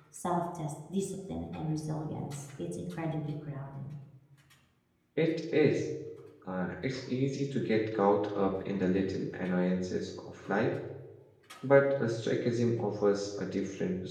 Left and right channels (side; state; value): both; identical; correlation 1.00